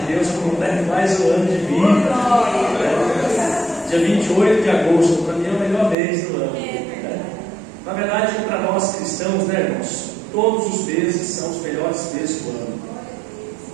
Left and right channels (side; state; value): left; drops out; at 6.0 s